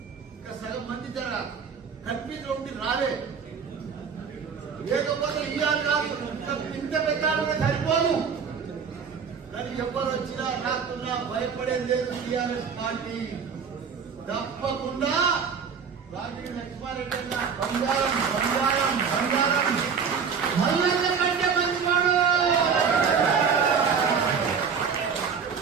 ఇంకా సగం మంది జర కన్ఫ్యూజ్ ఉండి రాలే. లేకపోతే ఇవాళ కాదు ఇంత పెట్టాలంటే సరిపోదు. కానీ ఎవరు వచ్చినా రాకున్నా భయపడేది లేదు. టీఆర్ఎస్ పార్టీ తప్పకుండా రాజకీయ లక్ష్మారెడ్డి బంగారం బంగారం బంగారం మల్లన్న కంటే మంచివాడు.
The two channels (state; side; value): quieter; left; 6.4 dB